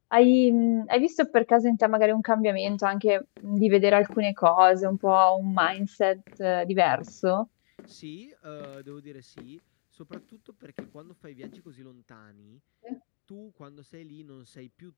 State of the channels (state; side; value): silent; right; digital silence